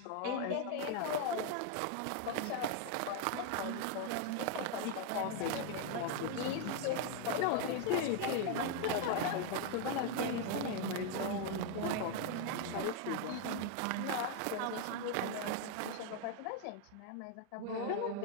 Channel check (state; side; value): different; both; correlation 0.01